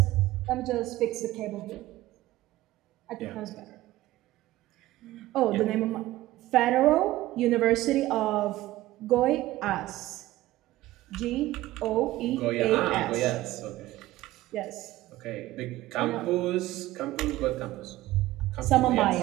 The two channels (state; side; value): quieter; left; 16.5 dB